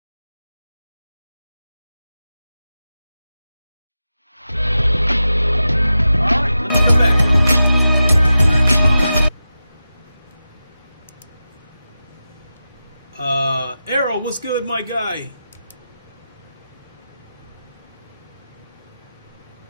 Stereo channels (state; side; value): inverted; both; correlation -0.92